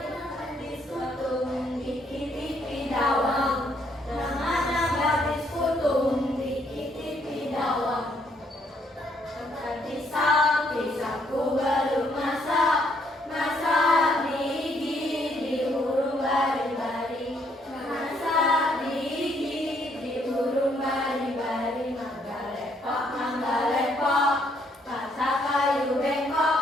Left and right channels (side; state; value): both; normal; correlation 0.70